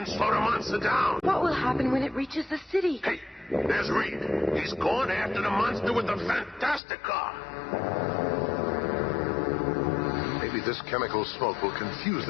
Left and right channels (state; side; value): drops out; right; at 6.8 s